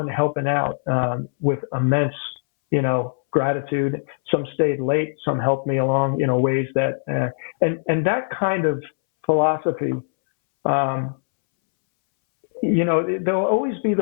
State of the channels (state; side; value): silent; right; 64 dB below the other